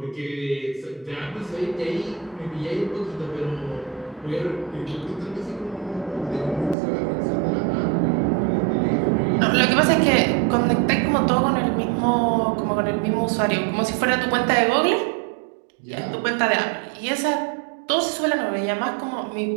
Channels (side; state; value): left; drops out; at 6.8 s